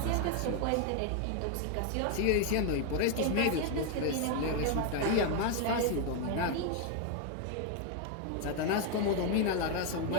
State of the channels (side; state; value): both; different; correlation 0.01